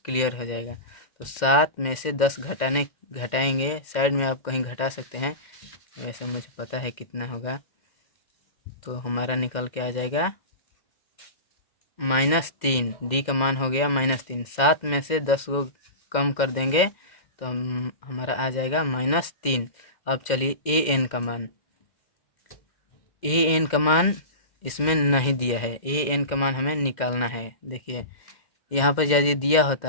क्लियर हो जाएगा। तो 7 में से 10 घटाएंगे, साइड में आप कहीं घटा सकते हैं, वैसे मुझे पता है कितना होगा। तो हमारा निकल के आ जाएगा -3। डी का मान हो गया -3। 7 में से 10 को कम कर देंगे तो हमारा आ जाएगा -3। अब चलिए ए एन का मान इसमें नहीं दिया है। ए एन का मान हमें निकालना है। देखिए, यहाँ पर यदि दिया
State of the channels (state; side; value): late; right; 2.1 ms